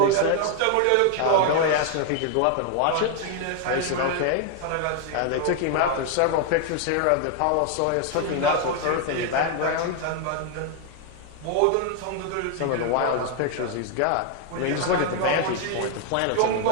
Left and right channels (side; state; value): both; different; correlation 0.01